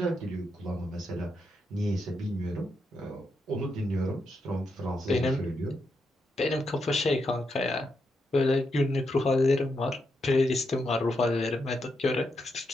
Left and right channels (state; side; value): normal; both; correlation 0.83